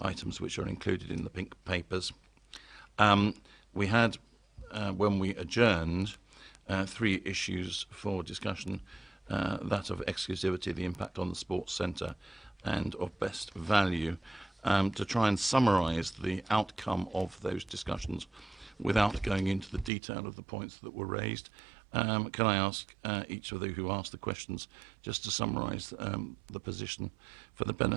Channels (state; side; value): drops out; left; at 19.9 s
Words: items which are included in the pink papers. We had, when we adjourned, 3 issues for discussion, that of exclusivity, the impact on the sports centre, and of best value. To try and summarise the outcome of those discussions without going into the detail of the points that were raised, can I ask each of you who asked the questions just to summarise the position for the